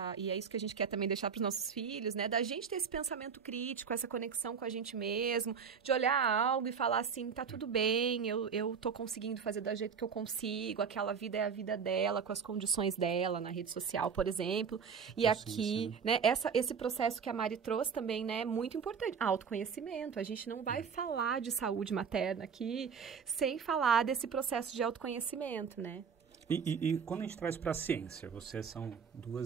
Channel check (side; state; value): left; quieter; 6.4 dB